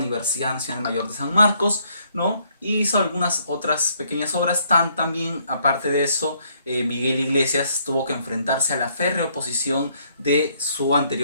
Nacional Mayor de San Marcos, ¿no? Y hizo algunas otras pequeñas obras. También, aparte de eso, Miguel Iglesias tuvo que enfrentarse a la férrea oposición de su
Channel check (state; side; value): inverted; both; correlation -0.68